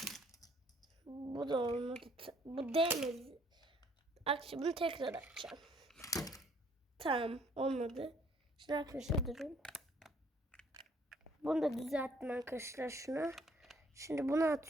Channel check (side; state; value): both; normal; correlation 0.63